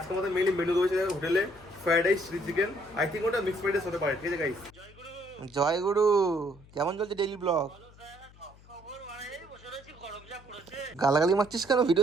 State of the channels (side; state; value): left; noise; hum, 23 dB below the sound